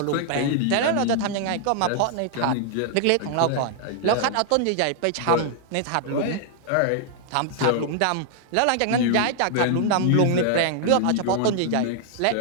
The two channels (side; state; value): both; different; correlation -0.01